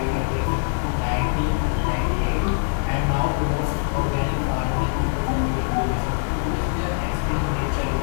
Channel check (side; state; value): right; silent; digital silence